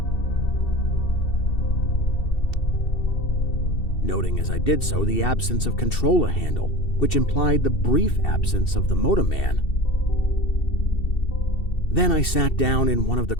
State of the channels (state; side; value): late; right; 2.7 ms